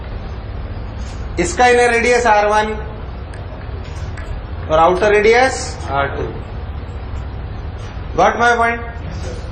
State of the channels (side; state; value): both; identical; correlation 1.00